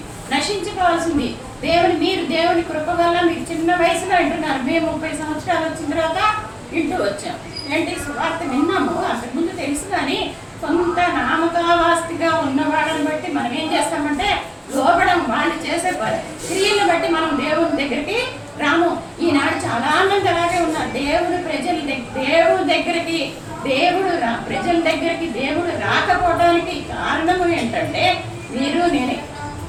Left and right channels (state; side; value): identical; both; correlation 1.00